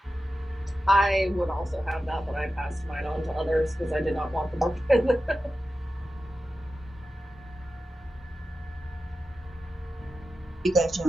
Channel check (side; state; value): both; normal; correlation 0.92